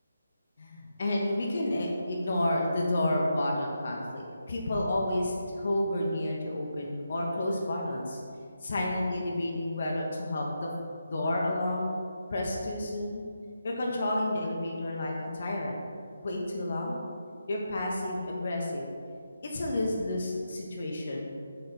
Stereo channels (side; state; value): both; inverted; correlation -0.85